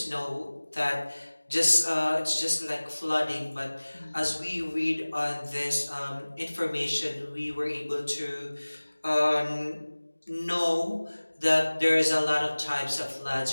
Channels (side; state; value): both; inverted; correlation -1.00